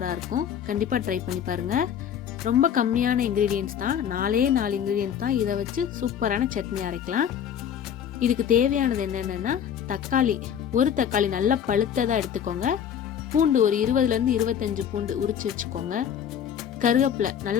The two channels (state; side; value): quieter; right; 8.8 dB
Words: இருக்கும். கண்டிப்பாக ட்ரை பண்ணி பாருங்கள். ரொம்ப கம்மியான இன்க்ரீடியன்ஸ் தான், 4 இன்க்ரீடியன்ஸ் தான். இதை வச்சு சூப்பரான சட்னி அரைக்கலாம். இதுக்கு தேவையானது என்னென்னா தக்காளி, ஒரு தக்காளி நல்லா பழுத்ததாக எடுத்துக்கோங்க. பூண்டு ஒரு 20லேருந்து 25 பூண்டு உரிச்சு வச்சுக்கோங்க. கருவேப்பிலை